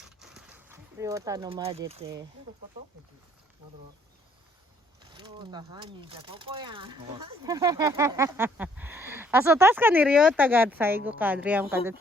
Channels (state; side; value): normal; both; correlation 0.64